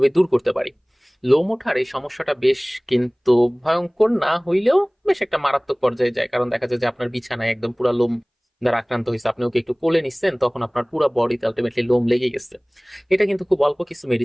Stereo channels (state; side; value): identical; both; correlation 1.00